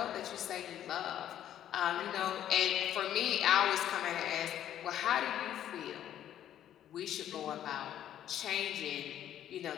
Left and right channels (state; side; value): quieter; right; 11.1 dB